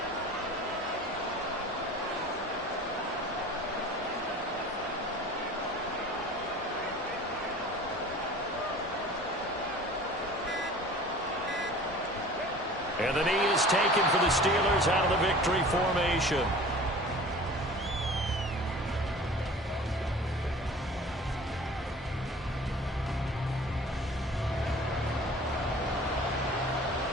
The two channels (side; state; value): both; normal; correlation 0.43